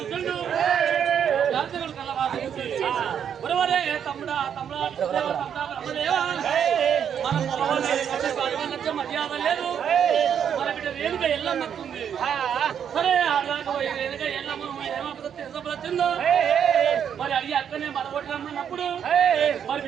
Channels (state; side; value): quieter; left; 8.4 dB